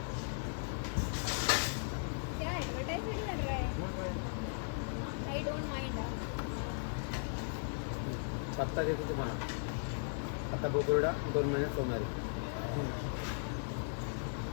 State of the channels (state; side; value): silent; right; 53 dB below the other